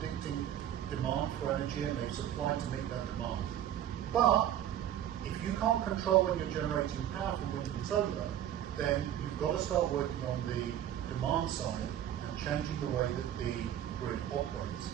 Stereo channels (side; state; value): left; quieter; 11.1 dB